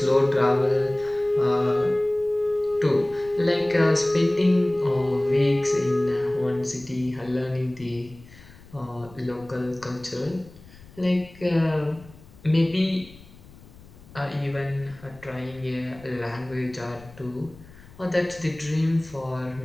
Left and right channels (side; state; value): left; noise; rumble, 22 dB below the sound